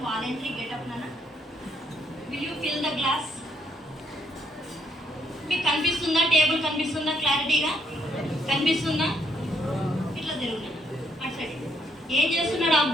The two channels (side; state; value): both; normal; correlation 0.71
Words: volunteer get up నాన్న. Will you fill the glass? మీకు కనిపిస్తుందా? టేబుల్ కనిపిస్తుందా? క్లారిటీగా కనిపిస్తుందా? ఇట్లా తిరుగునా అటు సైడ్. ఏం చేస్తున్నాడు